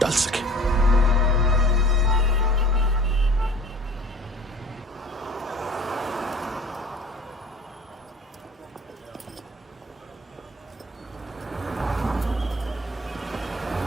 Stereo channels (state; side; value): normal; both; correlation 0.46